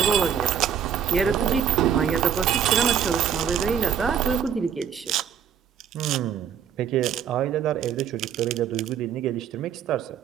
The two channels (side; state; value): left; quieter; 8.2 dB